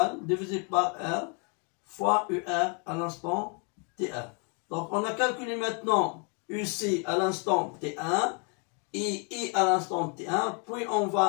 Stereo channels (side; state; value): right; quieter; 35.1 dB